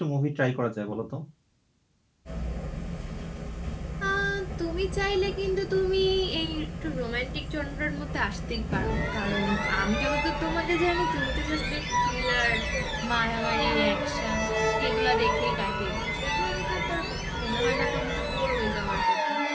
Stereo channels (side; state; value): both; identical; correlation 1.00